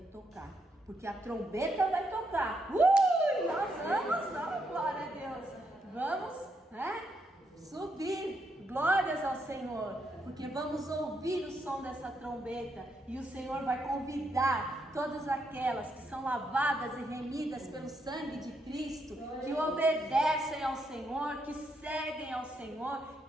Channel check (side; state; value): both; normal; correlation 0.78